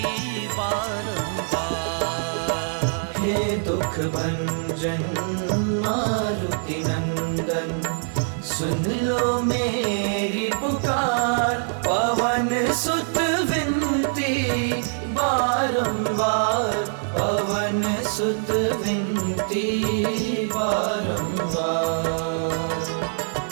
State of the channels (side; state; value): left; silent; 56 dB below the other